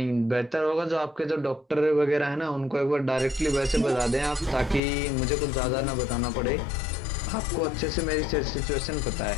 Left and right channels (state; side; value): drops out; right; at 4.8 s